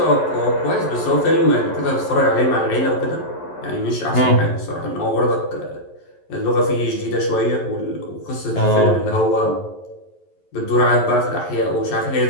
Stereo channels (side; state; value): right; late; 11 ms